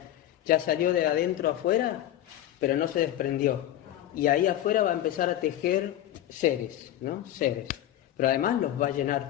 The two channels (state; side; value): quieter; right; 12.6 dB